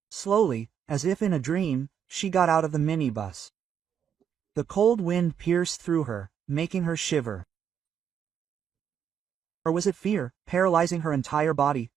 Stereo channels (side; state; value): left; quieter; 8.3 dB